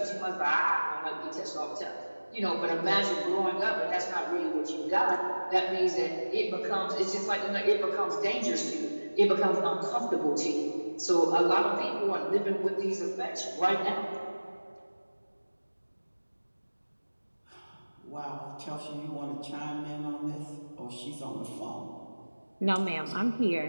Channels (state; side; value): inverted; both; correlation -1.00